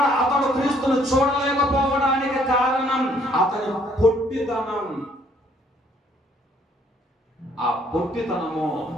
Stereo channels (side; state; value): both; normal; correlation 0.65